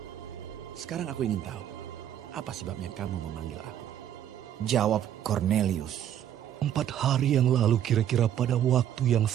Sekarang aku ingin tahu, apa sebabnya kamu memanggil aku?" Jawab Kornelius, 4 hari yang lalu kira-kira pada waktu yang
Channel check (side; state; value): left; quieter; 10.6 dB